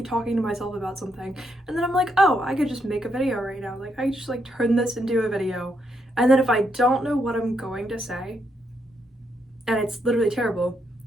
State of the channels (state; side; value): normal; both; correlation 0.78